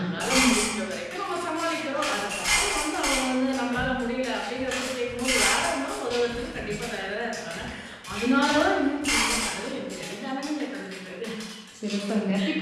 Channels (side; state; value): both; identical; correlation 1.00